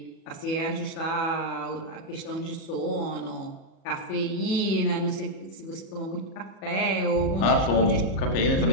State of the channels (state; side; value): late; right; 37 ms